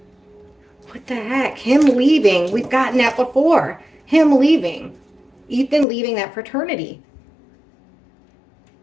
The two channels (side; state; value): right; drops out; at 5.9 s